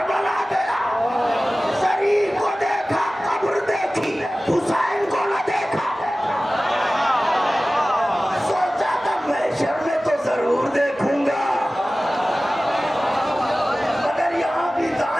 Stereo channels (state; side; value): normal; both; correlation 0.97